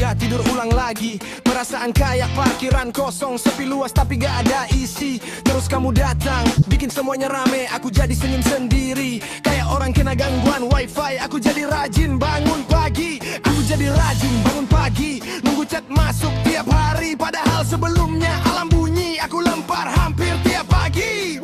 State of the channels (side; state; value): both; identical; correlation 1.00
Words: tidur ulang lagi. Perasaan kayak parkiran kosong, sepi luas tapi gak ada isi. Terus kamu datang, bikin semuanya rame, aku jadi senyum sendiri. Kayak orang kena gangguan wifi, aku jadi rajin bangun pagi. Aku jadi rajin bangun pagi, nunggu chat masuk tiap hari. Padahal sebelumnya alam bunyi, aku lempar hampir tiap pagi.